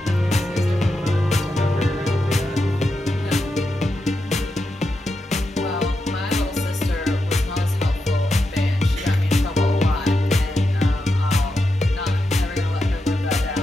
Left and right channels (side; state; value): both; normal; correlation 0.87